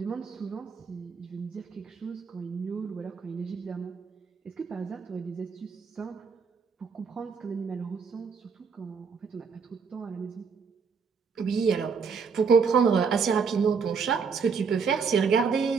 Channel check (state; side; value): quieter; left; 5.6 dB